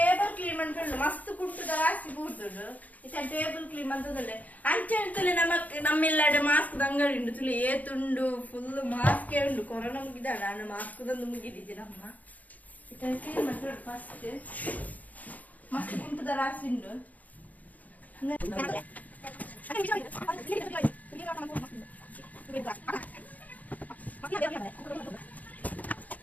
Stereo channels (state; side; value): late; right; 0.077 ms